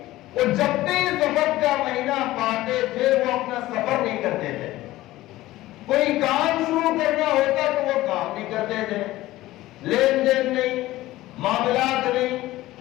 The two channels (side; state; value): right; quieter; 16.7 dB